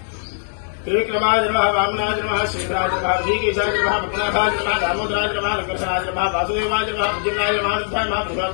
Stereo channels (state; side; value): silent; right; 65 dB below the other